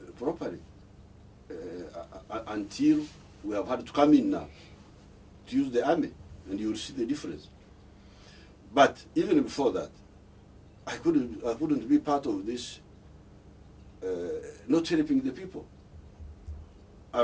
properly until we have had to come in now to use the army, and you will see the difference. But even before that, I couldn't be part of this. Not helping the people.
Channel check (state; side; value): identical; both; correlation 1.00